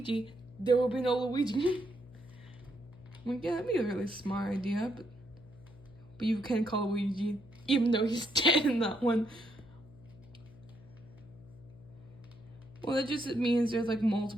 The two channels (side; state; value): left; noise; hum, 21 dB below the sound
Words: there will be no Luigi. I'm like, yeah, that'd be a really smart idea, but you can call Luigi, even though he's dead in that one. Well, that just means there's like